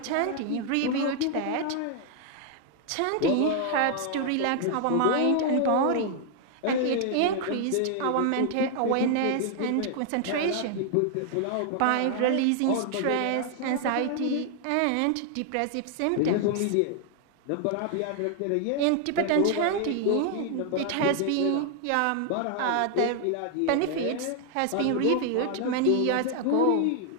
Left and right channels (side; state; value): both; different; correlation 0.00